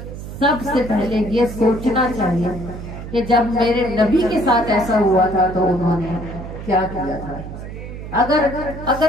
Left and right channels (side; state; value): right; noise; hum, 10 dB below the sound